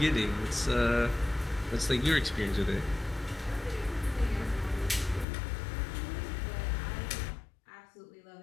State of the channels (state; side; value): drops out; right; at 5.2 s